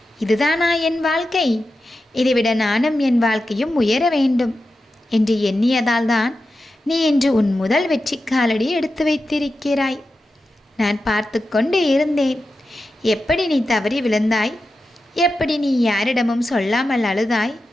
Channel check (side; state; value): both; normal; correlation 0.91